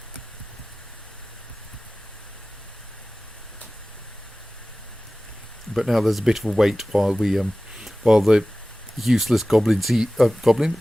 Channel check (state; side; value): normal; both; correlation 0.97